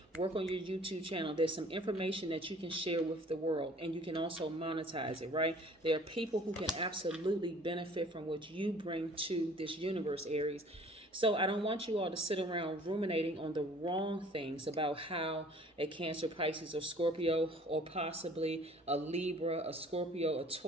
Work on your YouTube channel. There's some information that you can share with the world, and you can also monetize it, right? There are people who can absolutely benefit from what you bring to this universe, Aries. So I don't want you all to sit around ruminating on the wrong things about how a Cancer, Pisces, or Scorpio, or possibly a Libra, a Scorpio, a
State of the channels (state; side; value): normal; both; correlation 0.52